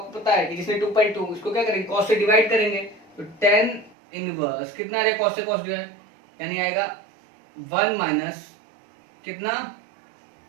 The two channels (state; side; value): drops out; left; at 4.0 s